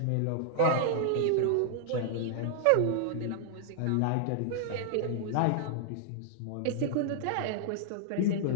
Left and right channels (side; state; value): both; different; correlation -0.01